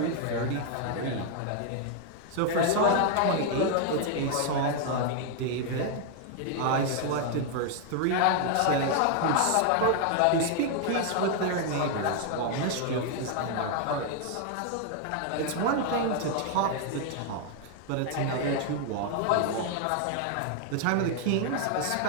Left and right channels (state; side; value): different; both; correlation 0.00